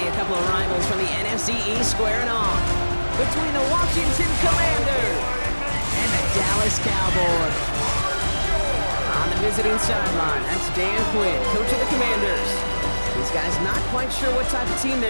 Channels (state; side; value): inverted; both; correlation -1.00